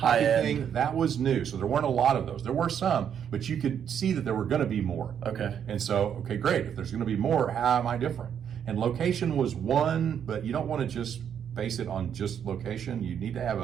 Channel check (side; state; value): left; quieter; 8.5 dB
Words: thing that was new. So there weren't a lot of those. There were some, but you could see that there were going to be more. Okay. And so, great. If there's going to be more, how am I different? And location was one, but you don't want to just base it on just location. You need to have